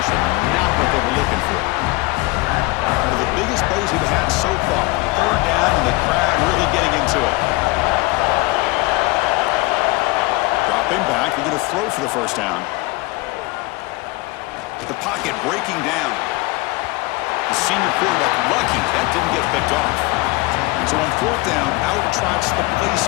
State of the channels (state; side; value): quieter; right; 22.9 dB